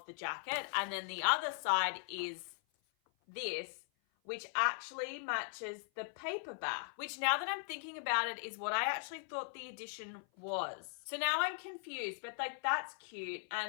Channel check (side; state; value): right; silent; 52 dB below the other